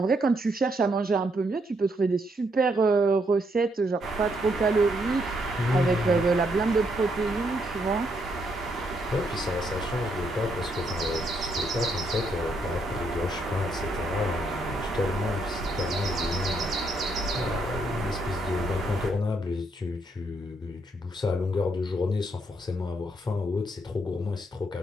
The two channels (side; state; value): both; normal; correlation 0.75